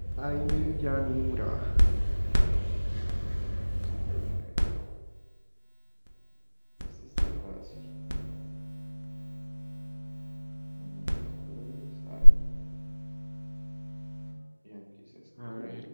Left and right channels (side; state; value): both; inverted; correlation -1.00